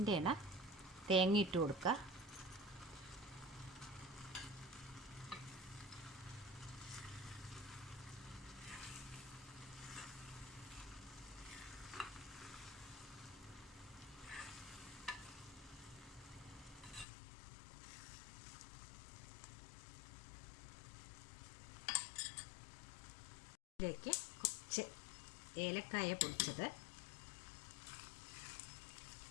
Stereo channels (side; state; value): right; drops out; at 17.1 s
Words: തേങ്ങ ഇട്ട് കൊടുക്കുക. ഇതിലേക്ക് കുറച്ച് ഏലക്കായ പൊടിച്ചത്,